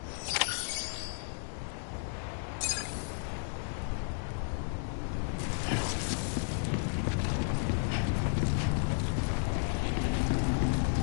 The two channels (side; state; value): right; silent; digital silence